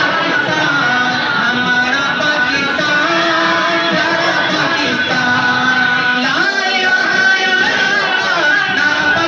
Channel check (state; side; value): identical; both; correlation 1.00